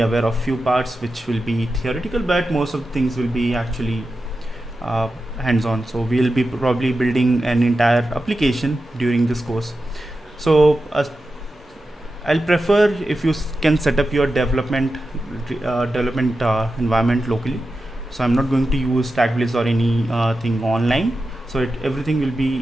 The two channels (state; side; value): normal; both; correlation 0.91